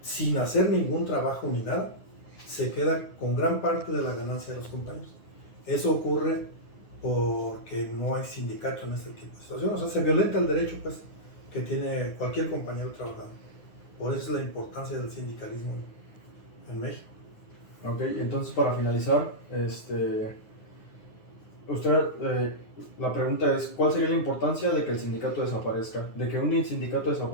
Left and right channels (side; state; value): right; late; 9.6 ms